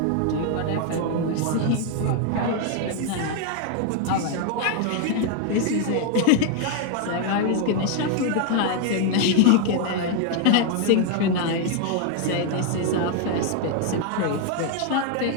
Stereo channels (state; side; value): different; both; correlation 0.01